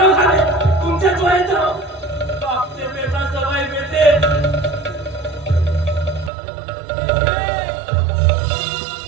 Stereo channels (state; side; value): drops out; left; at 6.3 s